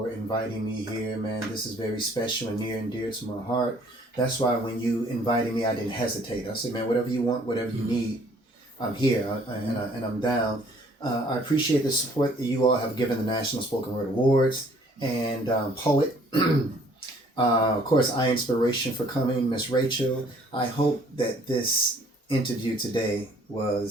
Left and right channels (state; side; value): normal; both; correlation 0.59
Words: inviting me here, man. This is very special and near and dear to my heart. That's why when you invited me, I didn't hesitate. I said, man, whatever you want, whatever you need, I'm here and I'm down. I appreciate the support that you all have given the National Spoken Word Awards and Poet. Of course, inspiration for coming, Miss Rachel. I hope that this interview today